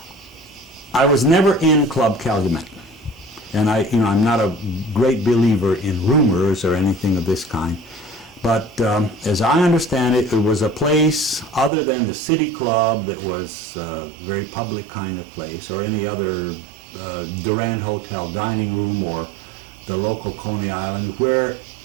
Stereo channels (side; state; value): left; drops out; at 11.7 s